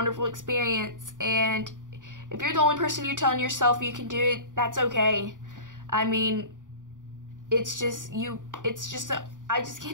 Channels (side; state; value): left; late; 0.88 ms